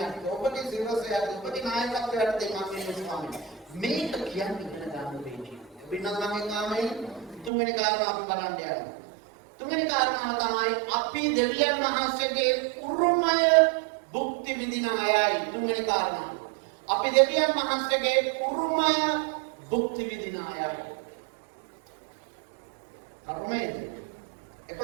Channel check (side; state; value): left; drops out; at 7.5 s